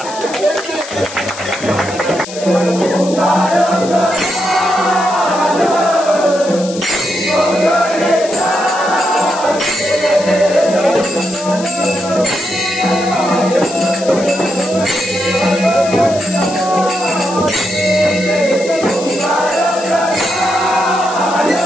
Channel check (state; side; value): noise; left; hiss, 13 dB below the sound